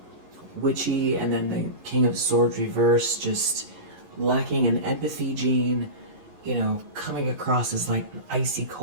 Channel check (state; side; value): late; left; 11 ms